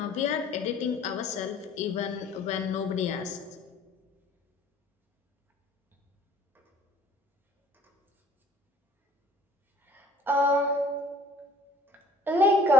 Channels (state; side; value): normal; both; correlation 0.53